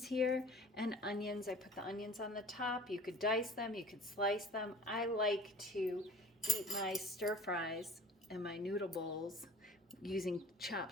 here and onions. I put the onions on the top. You could dice them, you could slice them. I like to eat my stir fries and my noodle bowls using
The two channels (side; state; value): both; normal; correlation 0.46